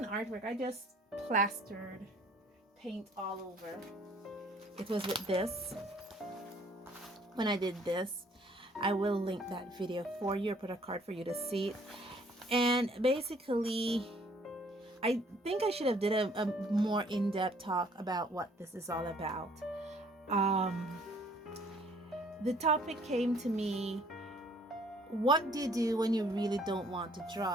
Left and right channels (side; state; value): both; normal; correlation 0.59